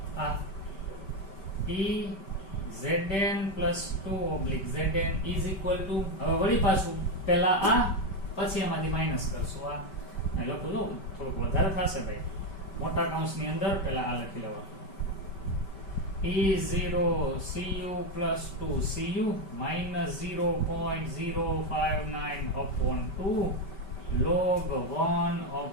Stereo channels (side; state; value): right; late; 5.2 ms